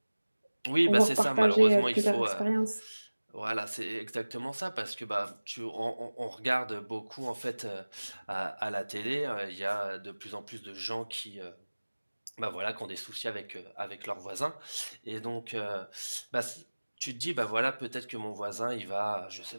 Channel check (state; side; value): inverted; both; correlation -1.00